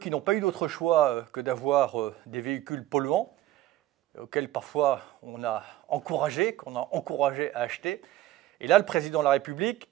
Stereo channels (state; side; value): quieter; left; 14.7 dB